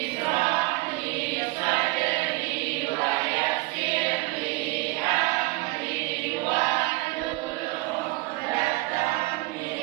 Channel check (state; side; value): quieter; left; 23.2 dB